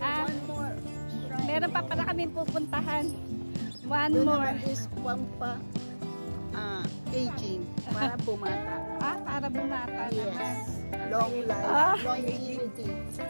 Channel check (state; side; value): inverted; both; correlation -1.00